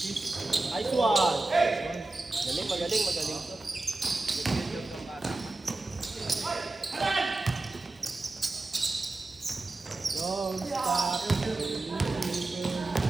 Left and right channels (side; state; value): left; quieter; 3.0 dB